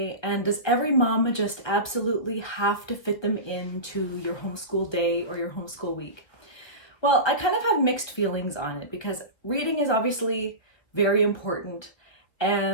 And does every mom just absolutely have to fit them into your homeschool day or your homeschool week? Well, I kind of have mixed feelings on it because reading is obviously very important,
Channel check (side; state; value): right; late; 1.4 ms